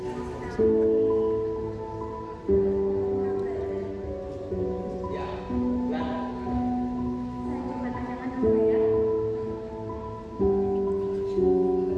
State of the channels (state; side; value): identical; both; correlation 1.00